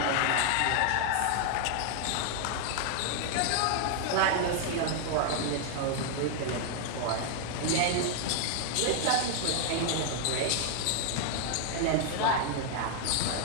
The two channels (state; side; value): different; both; correlation 0.00